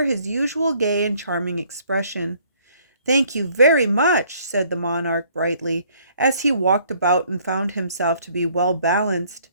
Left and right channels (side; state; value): both; inverted; correlation -0.62